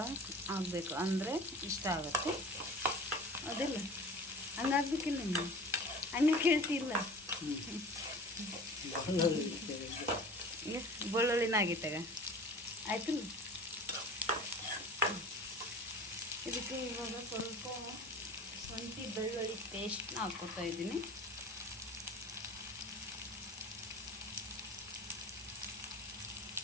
ಆಗಬೇಕು ಅಂದರೆ ಇಷ್ಟ ಆಗುತ್ತೆ. ಅದಿಲ್ಲ ಹಂಗಾಗ್ಬೇಕಿಲ್ಲ ನೀವು ಹಂಗೆ ಕೇಳ್ತಿಲ್ಲ. ಬೆಳ್ಳುಳ್ಳಿನ ಆಗಿತ್ತಾಗ ಆಯ್ತಿಲ್ಲ. ಇದಕ್ಕೆ ಇವಾಗ ಸ್ವಲ್ಪ ಶುಂಠಿ ಬೆಳ್ಳುಳ್ಳಿ ಪೇಸ್ಟ್ನ ಹಾಕ್ಕೊತಾ ಇದ್ದೀನಿ.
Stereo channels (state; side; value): normal; both; correlation 0.41